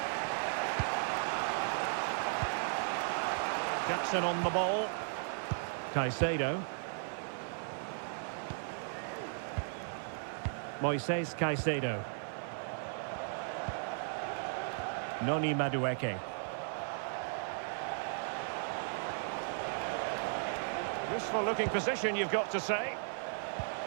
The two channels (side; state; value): left; silent; 54 dB below the other